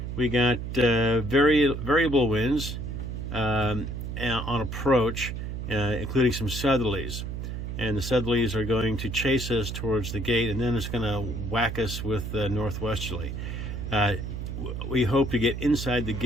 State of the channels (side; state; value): right; noise; hum, 5 dB below the sound